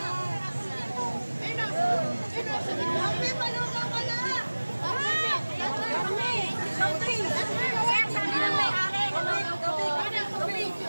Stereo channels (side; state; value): both; inverted; correlation -1.00